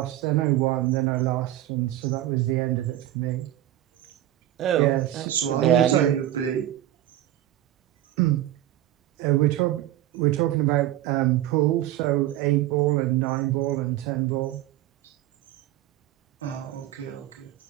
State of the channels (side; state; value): left; quieter; 13.6 dB